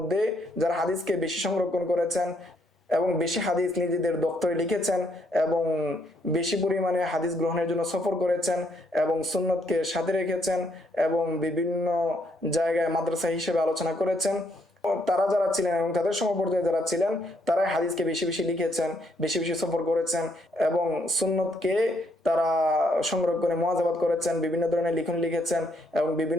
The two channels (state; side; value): normal; both; correlation 0.72